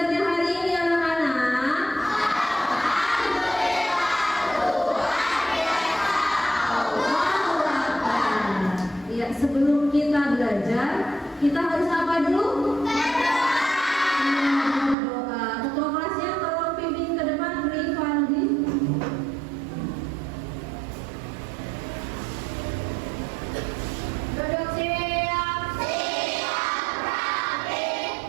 hari ini anak-anak? Iya, sebelum kita belajar, kita harus apa dulu? Berdoa. Ketua kelasnya tolong pimpin ke depan, beri Fandi. Duduk siap.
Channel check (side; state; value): left; drops out; at 15.0 s